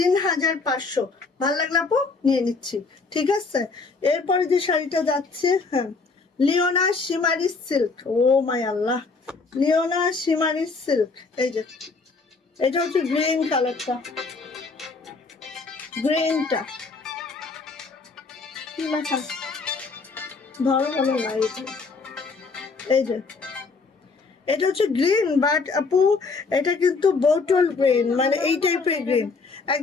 ভালো লাগলো আপু, নিয়ে নিচ্ছি, ঠিক আছে। এরপরে যে শাড়িটা যাচ্ছে, হ্যাঁ লিওনা শিমারি সিল্ক, ও মাই আল্লাহ, লিওনা শিমারি সিল্ক। এই যে এটা হচ্ছে গ্রিন কালারটা, গ্রিনটা কি লেখা ধরো বলো না, এই যে এটা হচ্ছে গ্রিন, বাট আপু এটা কিন্তু বোটল গ্রিন, মানে এই টাইপের গ্রিন,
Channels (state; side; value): quieter; right; 4.3 dB